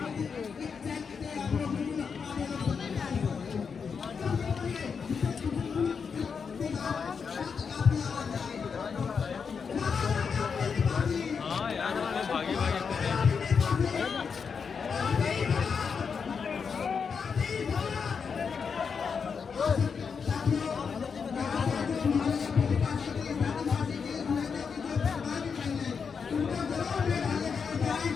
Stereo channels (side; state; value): right; quieter; 6.0 dB